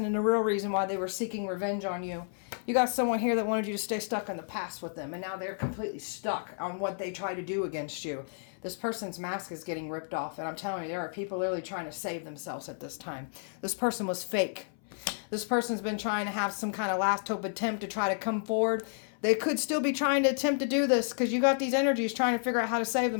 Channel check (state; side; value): silent; right; 57 dB below the other